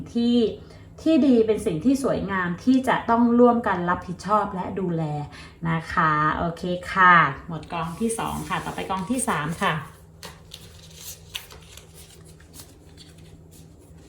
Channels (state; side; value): identical; both; correlation 1.00